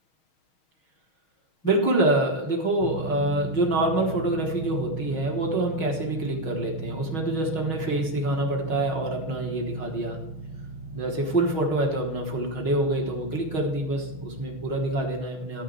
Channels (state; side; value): late; right; 6.3 ms